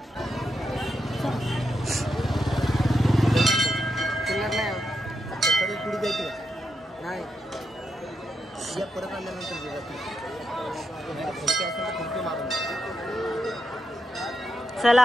नाही परत आल्यानंतर चला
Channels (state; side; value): normal; both; correlation 0.85